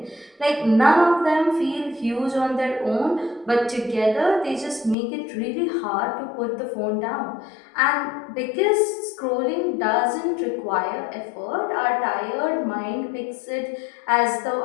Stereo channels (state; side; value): drops out; right; at 5.0 s